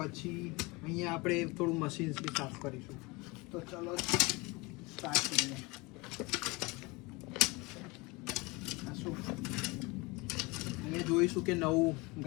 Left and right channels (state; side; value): quieter; right; 25.2 dB